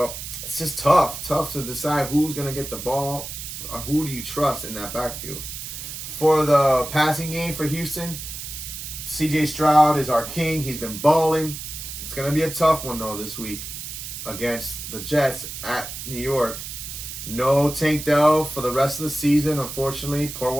it's just tough to decide who's going to get the ball who do you trust in that backfield? For the passing game for Houston, C.J. Stroud is our king. He's been balling. It's going to be a tough one, though, this week against the Jets at New York. No Tank Dell for the rest of the season, unfortunately. Pour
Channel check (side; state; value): right; noise; hiss, 8 dB below the sound